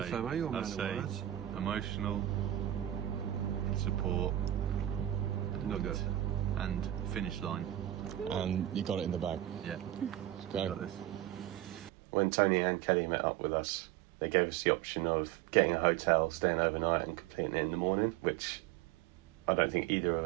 say emotional support, Nugget. and finish line. And you got it in the bag. Yeah. Okay. Got this. When Tony and Kelly met up with us, they gave us the option of getting a hotel, staying overnight and completing it in the morning, which I don't think either of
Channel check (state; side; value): quieter; left; 13.4 dB